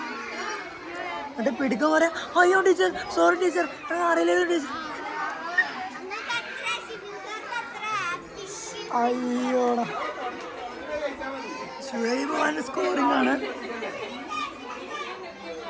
എന്നിട്ട് പിടിക്കാൻ പറയാ, അയ്യോ ടീച്ചർ സോറി ടീച്ചർ അറിയില്ല ടീച്ചർ. അയ്യോടാ ഷുഹൈബ് ഖാന്റെ സ്കോറിംഗ് ആണ്.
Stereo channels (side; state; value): both; identical; correlation 1.00